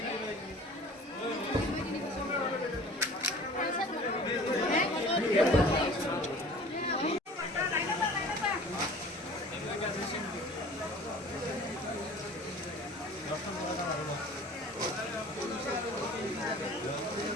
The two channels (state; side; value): normal; both; correlation 0.45